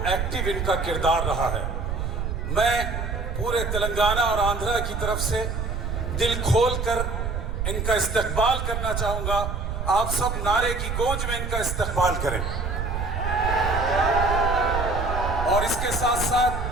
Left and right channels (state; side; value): noise; right; rumble, 3 dB below the sound